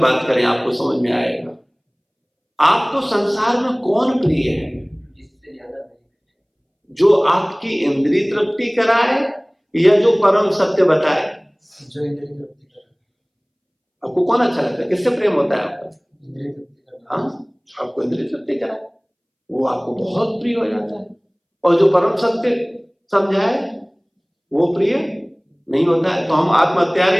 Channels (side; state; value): both; identical; correlation 1.00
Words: करें, आपको समझ में आएगा। आपको संसार में कौन प्रिय है? जो आपकी इंद्रिय तृप्ति कराए या जो परम सत्य बताए? जो इंद्रिय तृप्ति कराए। आपको कौन अच्छा लगता है? किससे प्रेम होता है आपका? इंद्रिय तृप्ति। हाँ, आपको इंद्रिय तृप्ति कराए वो आपको बहुत प्रिय हो जाता है, और जो परम सत्य समझाए वो प्रिय नहीं होता है। तो हम